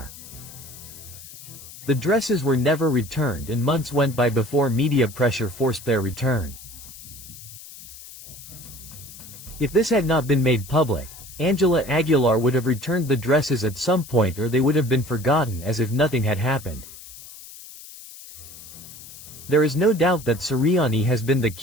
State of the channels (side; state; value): left; noise; hiss, 16 dB below the sound